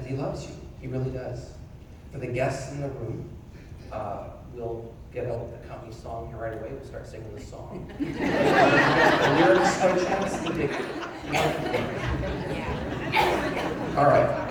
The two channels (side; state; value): both; identical; correlation 1.00